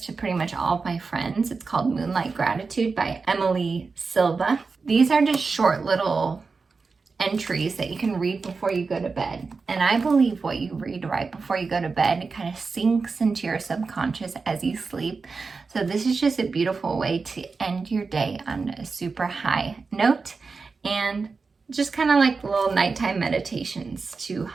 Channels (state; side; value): quieter; left; 4.5 dB